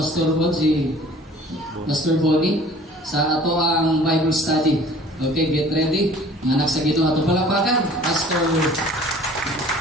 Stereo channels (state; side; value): normal; both; correlation 0.49